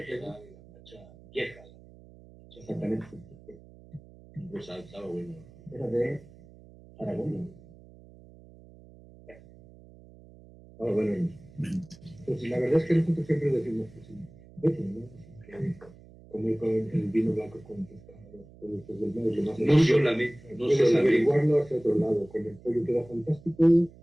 de garnacha vieja. exactamente. Rosado estaba bueno. Era de Aragón, ¿no? Ah, bueno. Pues la verdad es que nosotros siempre decimos que sí. ¿No? Que comer con el vino blanco con pescado, productos del mar, es lo más No solamente. puedes averiguarlo hacia otro lado. Con el pollo queda fantástico.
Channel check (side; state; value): right; noise; hum, 22 dB below the sound